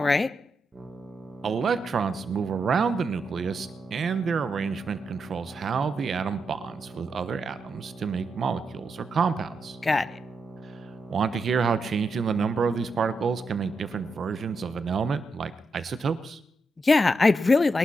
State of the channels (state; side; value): normal; both; correlation 0.84